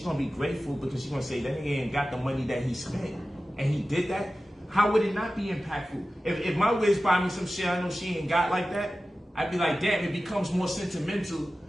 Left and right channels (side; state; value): both; normal; correlation 0.95